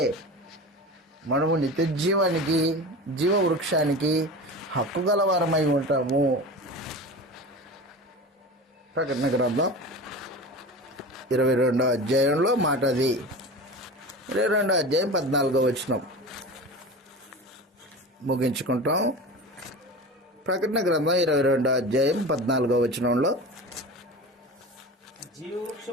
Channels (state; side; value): normal; both; correlation 0.32